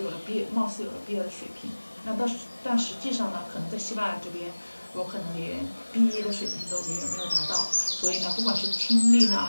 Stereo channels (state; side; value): inverted; both; correlation -1.00